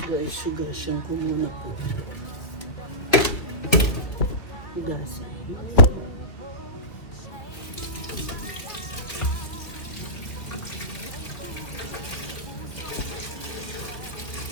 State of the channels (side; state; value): right; late; 2.2 ms